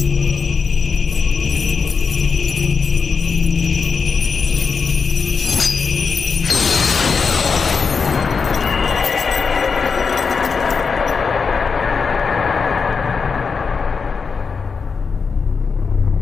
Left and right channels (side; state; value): right; quieter; 5.3 dB